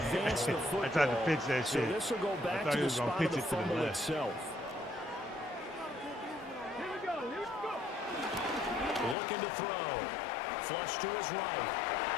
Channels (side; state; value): right; drops out; at 9.2 s